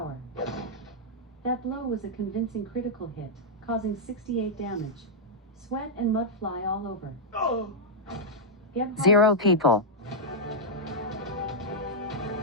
That blow was a convincing critical hit, causing 68 damage. Sweat and mud fly all over. Gebhard 0 people.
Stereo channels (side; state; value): both; normal; correlation -0.06